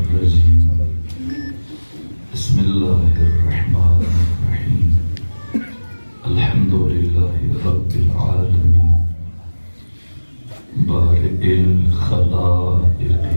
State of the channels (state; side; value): inverted; both; correlation -1.00